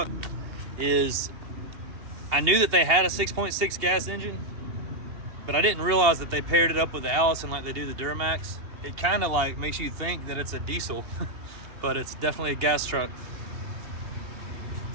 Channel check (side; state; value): left; late; 2.8 ms